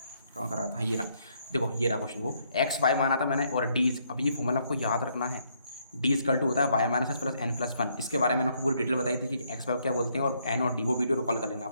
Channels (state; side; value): inverted; both; correlation -0.71